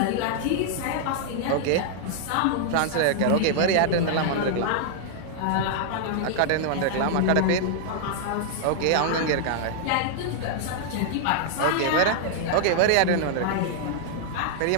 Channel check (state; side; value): different; both; correlation -0.01